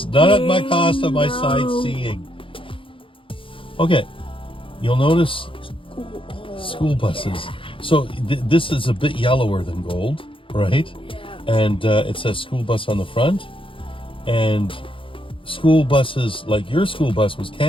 not at my cost of my sightseeing. Okay, you'll notice School buses. So this is a bit yellower than gold, right? Yeah. And it says school bus on the front. And school buses, like your school bus was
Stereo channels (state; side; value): late; right; 0.25 ms